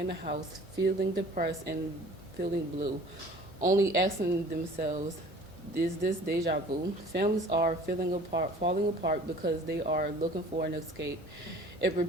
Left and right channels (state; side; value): normal; both; correlation 0.48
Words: the house, feeling depressed and feeling blue, only asking themselves, is this deja vu? Families are falling apart because they are looking for an escape. It